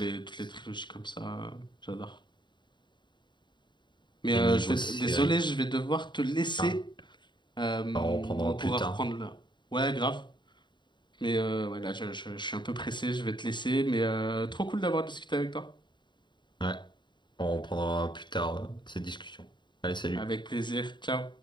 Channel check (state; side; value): late; right; 0.22 ms